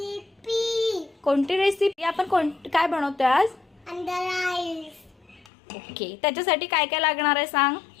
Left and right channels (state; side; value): drops out; right; at 5.5 s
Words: कोणती रेसिपी आपण काय बनवतोय आज? अंडा राईस. ओके, त्याच्यासाठी काय काय लागणार आहे सांग.